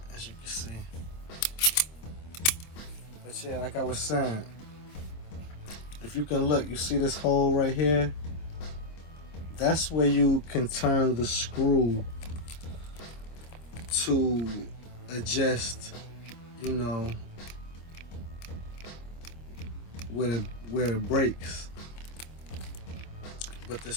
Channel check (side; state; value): right; late; 25 ms